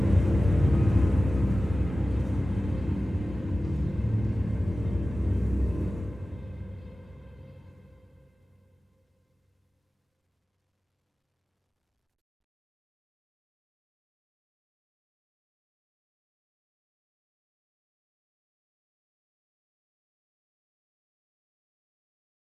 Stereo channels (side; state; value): both; normal; correlation 0.96